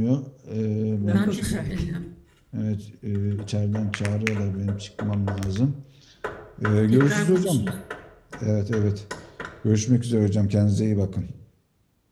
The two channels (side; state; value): both; identical; correlation 1.00